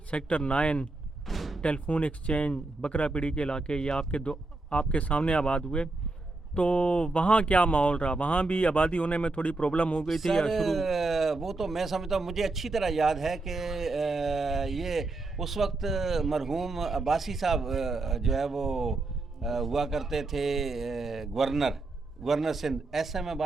سیکٹر 9، ٹیلیفون ایکسچینج، بکرا پیڑی کے علاقے، یہ آپ کے سامنے آباد ہوئے. تو وہاں کیا ماحول رہا؟ وہاں بھی آبادی ہونے میں تھوڑی پرابلم ہو گئی تھی یا شروع؟ وہ تو میں سمجھتا ہوں، مجھے اچھی طرح یاد ہے کہ یہ اس وقت مرحوم عباسی صاحب جو ہے وہ ہوا کرتے تھے governor Sindh, S M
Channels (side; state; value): left; quieter; 3.2 dB